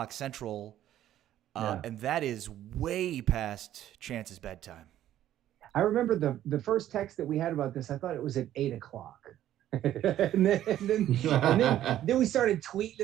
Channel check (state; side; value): quieter; left; 12.3 dB